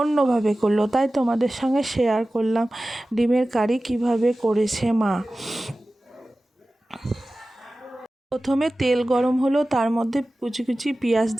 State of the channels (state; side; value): normal; both; correlation 0.96